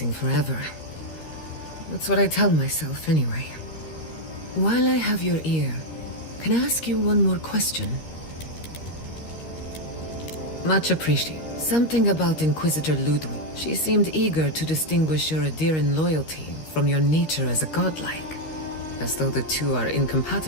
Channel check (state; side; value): late; right; 13 ms